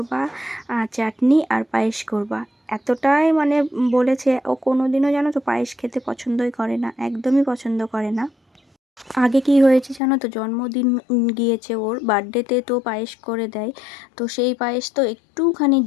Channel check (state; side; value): drops out; right; at 10.0 s